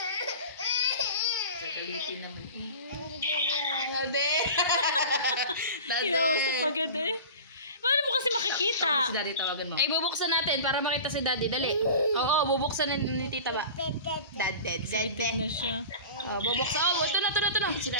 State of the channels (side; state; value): both; inverted; correlation -0.35